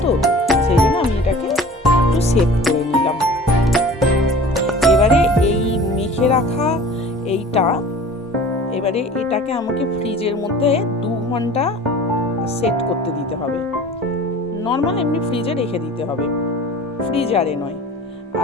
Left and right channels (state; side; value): normal; both; correlation 0.42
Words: তো সেই জন্য আমি এটাকে একটু সেট করে নিলাম। এবারে এই মেখে রাখা এইটা, এবারে এটাকে আমাকে ফ্রিজের মধ্যে 2 ঘন্টা সেট করতে দিতে হবে। নর্মাল এমনি ফ্রিজে রেখে দিতে হবে, ফ্রিজারে নয়।